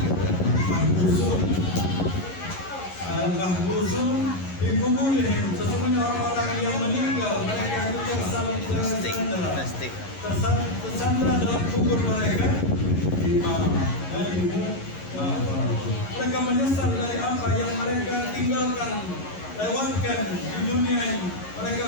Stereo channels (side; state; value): right; late; 11 ms